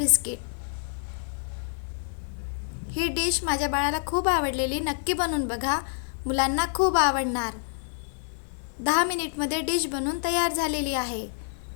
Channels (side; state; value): right; silent; digital silence